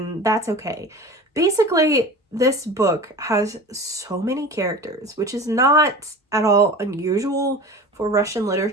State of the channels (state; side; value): normal; both; correlation 0.35